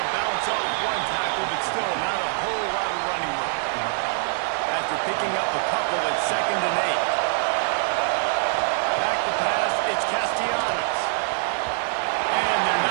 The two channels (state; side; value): silent; left; digital silence